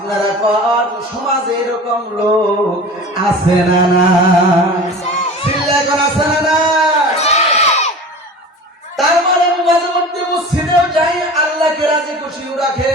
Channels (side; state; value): both; normal; correlation 0.37